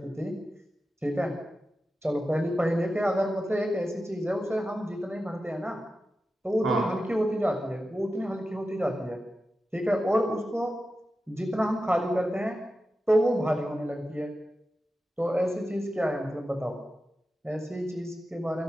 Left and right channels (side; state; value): both; normal; correlation 0.92